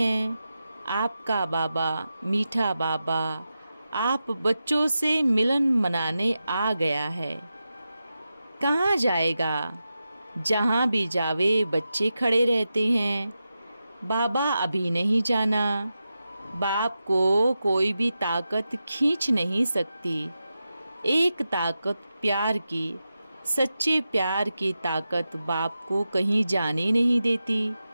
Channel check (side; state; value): both; inverted; correlation -0.90